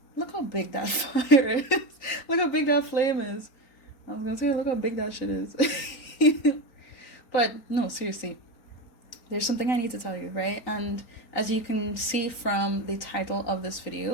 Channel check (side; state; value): right; late; 3.9 ms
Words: fire is. Look how big that flame is. I was gonna say, look how big that shit is. But no, seriously, there's something I need to tell you, right? And as you can see from the title of this